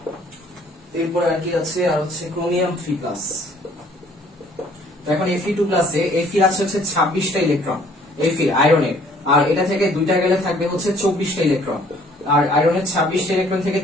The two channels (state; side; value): normal; both; correlation 0.59